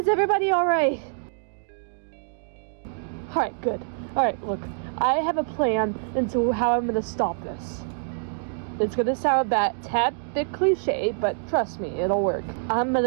everybody alright? Alright, good. Alright, look, I have a plan into how I'm gonna stop this. It's gonna sound a tad bit cliche, but trust me, it'll work. I'm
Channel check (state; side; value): silent; left; digital silence